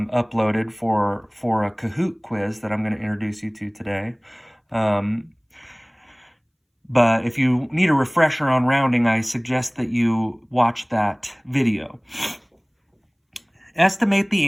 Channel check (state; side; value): identical; both; correlation 1.00